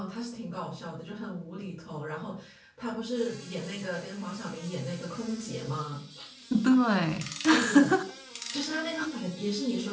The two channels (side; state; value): both; identical; correlation 1.00